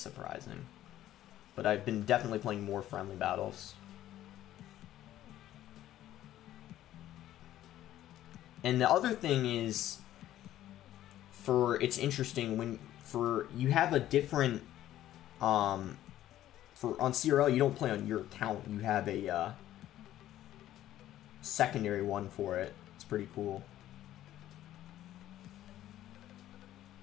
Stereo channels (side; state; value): right; quieter; 13.1 dB